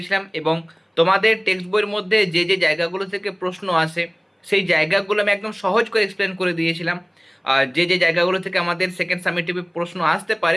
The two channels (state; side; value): identical; both; correlation 1.00